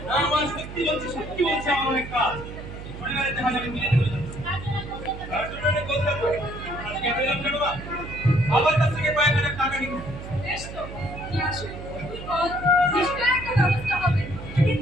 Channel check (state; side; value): noise; right; hum, 11 dB below the sound